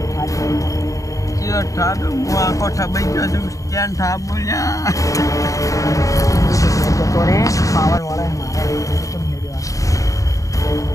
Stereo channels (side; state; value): right; late; 0.16 ms